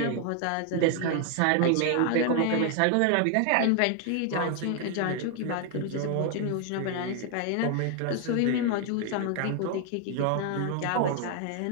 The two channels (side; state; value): both; different; correlation 0.00